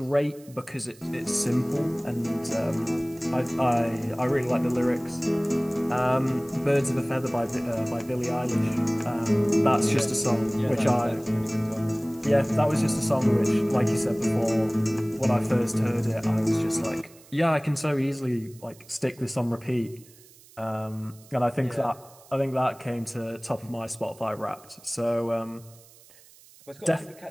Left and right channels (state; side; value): noise; right; hiss, 24 dB below the sound